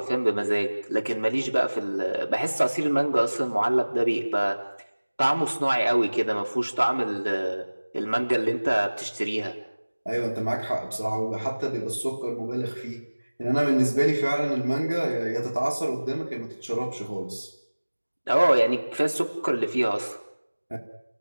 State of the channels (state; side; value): inverted; both; correlation -1.00